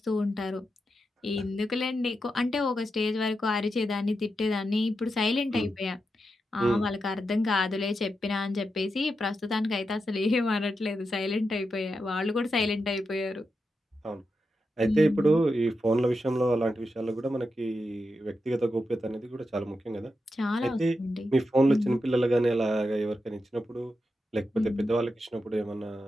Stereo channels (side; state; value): both; normal; correlation 0.87